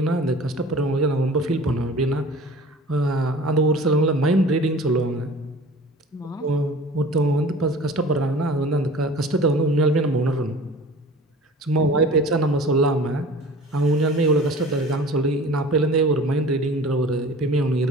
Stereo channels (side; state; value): both; normal; correlation 0.42